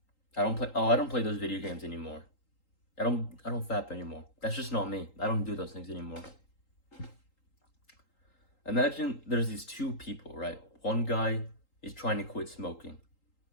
I don't play those video games anymore. I don't fap anymore. That's just not me. I don't do those things anymore. Imagine there's these two people, right? One guy is trying to quit smoking.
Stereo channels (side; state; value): right; late; 3.8 ms